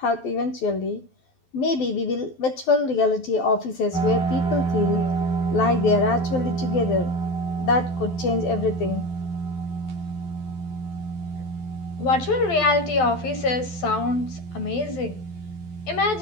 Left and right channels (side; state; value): right; late; 12 ms